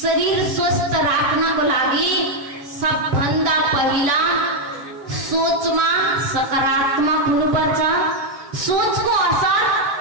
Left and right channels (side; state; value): left; late; 7.6 ms